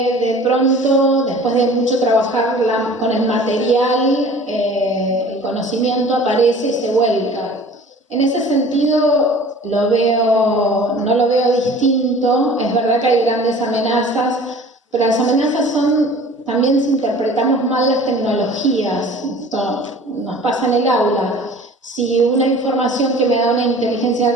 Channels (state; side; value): normal; both; correlation 0.45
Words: de pronto, después de mucho trabajar con el material, el conocimiento aparece y se vuelca. En ese sentido no lo veo distinto. Es verdad que hay grandes amenazas, pero las amenazas son también si interpretamos mal las tecnologías. Esto nos pasa en el aula. Si una información que me da una inteligencia